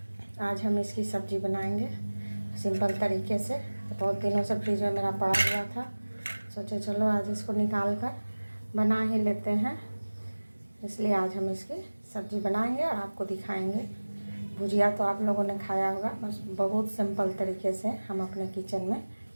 आज हम इसकी सब्ज़ी बनाएंगे सिंपल तरीके से। तो बहुत दिनों से फ्रिज में मेरा पड़ा हुआ था, सोचे चलो आज इसको निकाल कर बना ही लेते हैं। इसलिए आज हम इसकी सब्ज़ी बनाएंगे और आपको दिखाएंगे। भुजिया तो आप लोगों ने खाया होगा, बस बहुत सिंपल तरीके से हम अपने किचन में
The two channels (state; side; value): inverted; both; correlation -1.00